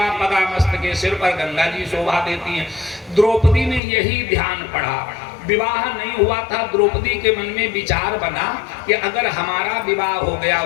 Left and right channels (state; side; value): drops out; right; at 3.8 s